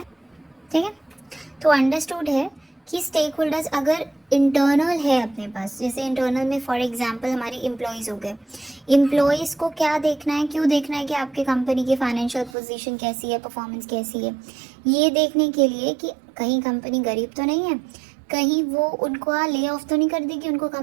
ठीक है। तो अंडरस्टूड है कि स्टेक होल्डर्स अगर इंटरनल है अपने पास, जैसे इंटरनल में फॉर एग्जांपल हमारे एम्प्लॉयज़ हो गए। एम्प्लॉयज़ को क्या देखना है, क्यों देखना है कि आपके कंपनी की फाइनेंशियल पोजीशन कैसी है, परफॉर्मेंस कैसी है? ये देखने के लिए कि कहीं कंपनी गरीब तो नहीं है, कहीं वो उनको ले ऑफ तो नहीं कर देगी, उनको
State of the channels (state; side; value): drops out; left; at 12.5 s